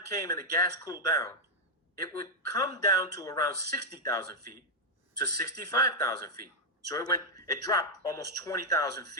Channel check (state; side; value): normal; both; correlation -0.01